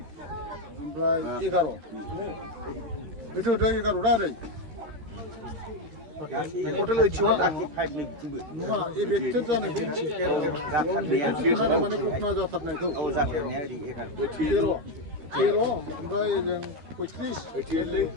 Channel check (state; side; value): late; left; 13 ms